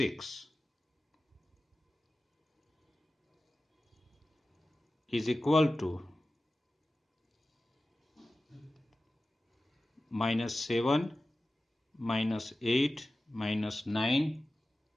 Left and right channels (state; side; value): normal; both; correlation 0.95